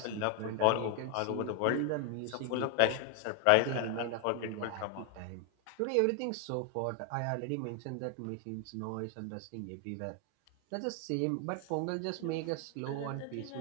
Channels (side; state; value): both; different; correlation 0.00